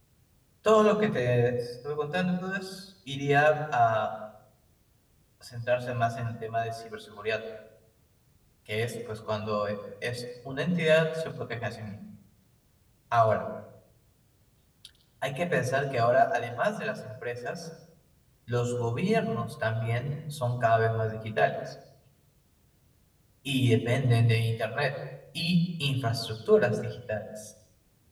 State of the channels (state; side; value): identical; both; correlation 1.00